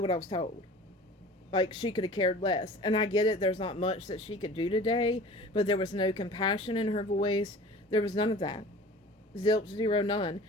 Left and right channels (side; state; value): both; normal; correlation 0.42